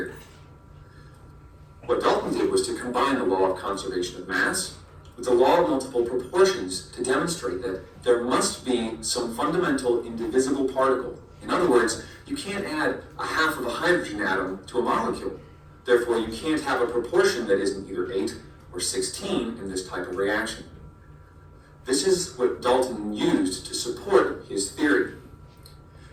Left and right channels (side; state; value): both; identical; correlation 1.00